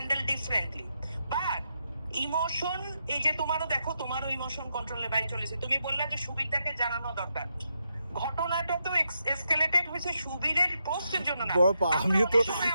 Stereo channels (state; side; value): inverted; both; correlation -0.82